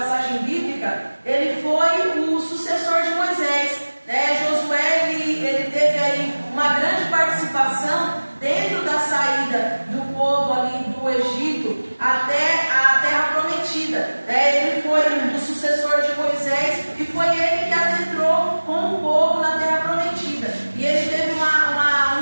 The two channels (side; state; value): both; inverted; correlation -1.00